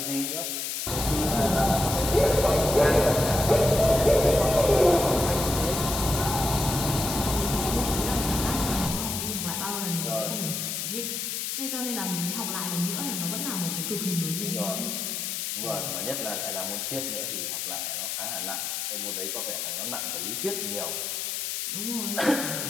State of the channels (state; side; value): noise; left; hiss, 3 dB below the sound